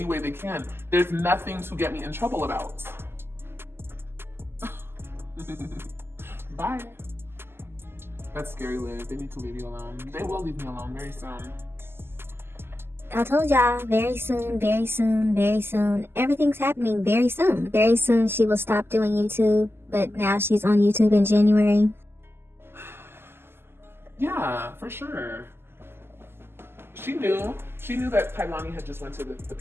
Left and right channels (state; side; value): late; left; 0.12 ms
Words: way they can. There's nothing to get me in trouble about. Bye. That's scary, Liv. They need to leave you alone. They will leave me alone very soon. I told y'all, very soon, very soon, very soon. Everything's happening very soon. Very soon she will stop doing YouTube, but now she's on YouTube in January. Yeah, for sure. She knew that Kailani had just went to the